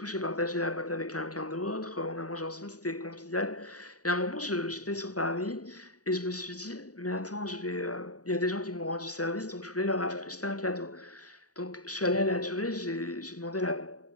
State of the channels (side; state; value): right; late; 0.67 ms